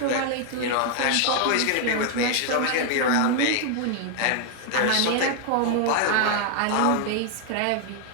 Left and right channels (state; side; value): different; both; correlation 0.00